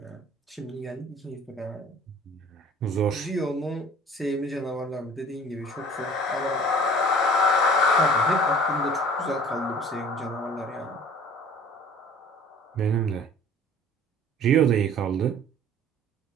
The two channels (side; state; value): both; normal; correlation 0.48